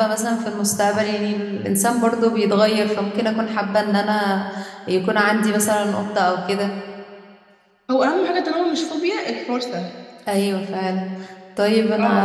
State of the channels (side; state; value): both; identical; correlation 1.00